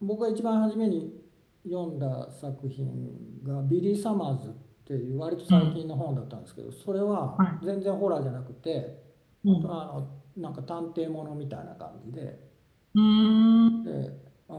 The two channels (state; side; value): identical; both; correlation 1.00